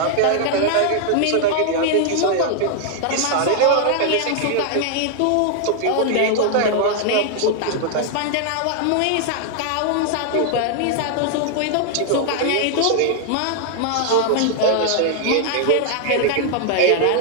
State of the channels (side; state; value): both; different; correlation 0.00